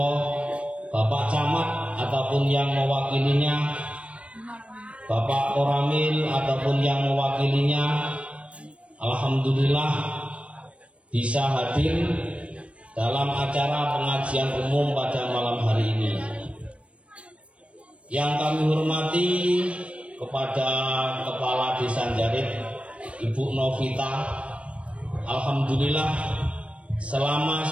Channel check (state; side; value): late; left; 0.062 ms